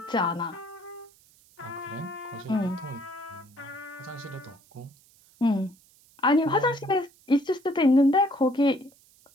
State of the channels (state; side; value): noise; right; hiss, 29 dB below the sound